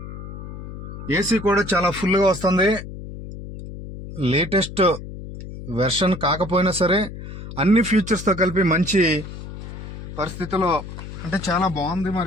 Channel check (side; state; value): left; noise; hum, 11 dB below the sound